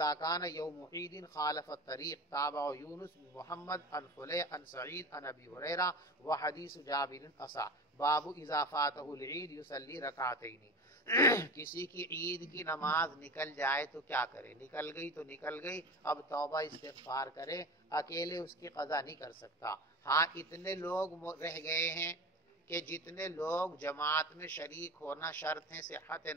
كان يوم عيد خالف الطريق تابع يونس بن محمد عن فلي عن سعيد عن ابي هريره وحديث جابر اصح۔ باب اذا فاته العيد يصلي ركعتين، کسی کی عید کی نماز نکل جائے تو کیا کرے؟ نکل گئی تو نکل گئی، اب توبہ استغفار کرے، اکیلے اس کی قضا نہیں کر سکتا۔ ہاں اتنے لوگ رہ گئے ہیں کہ جتنے لوگ جماعت میں شریک ہونا شرط ہے صحت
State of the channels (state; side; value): normal; both; correlation 0.31